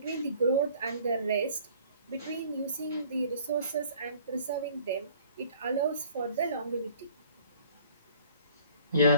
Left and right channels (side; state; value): both; inverted; correlation -0.54